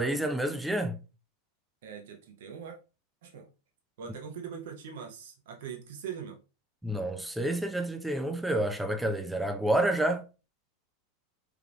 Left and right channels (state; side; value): normal; both; correlation 0.70